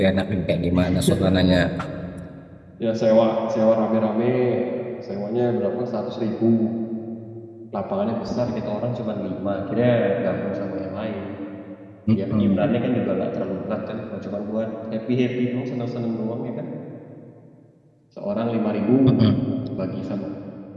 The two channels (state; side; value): identical; both; correlation 1.00